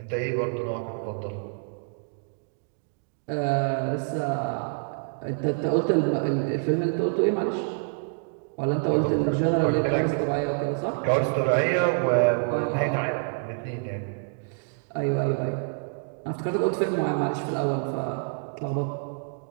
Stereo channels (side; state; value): left; silent; digital silence